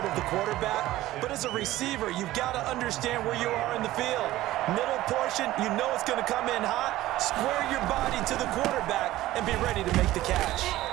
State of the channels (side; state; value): left; quieter; 15.9 dB